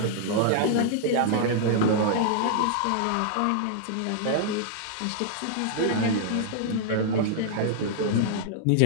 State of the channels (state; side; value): different; both; correlation -0.01